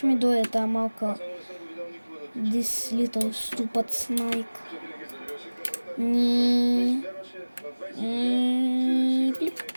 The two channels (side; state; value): both; inverted; correlation -1.00